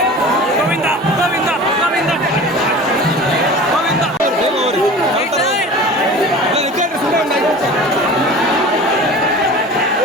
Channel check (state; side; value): normal; both; correlation 0.38